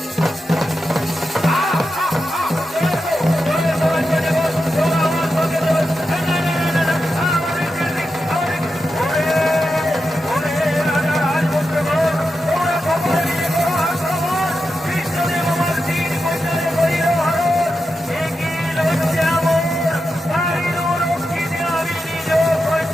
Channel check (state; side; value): normal; both; correlation 0.89